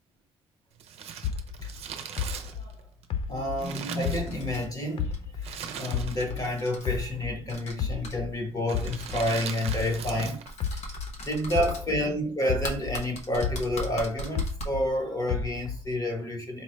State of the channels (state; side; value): normal; both; correlation 0.50